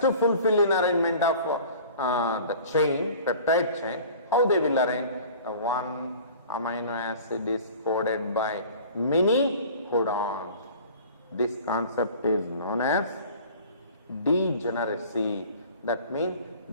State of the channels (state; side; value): inverted; both; correlation -0.44